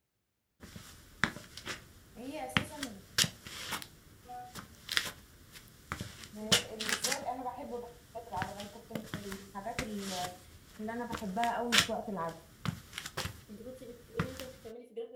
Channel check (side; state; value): both; identical; correlation 1.00